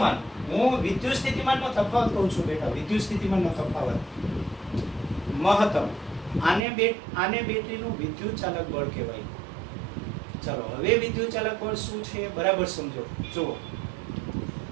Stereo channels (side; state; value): left; drops out; at 6.6 s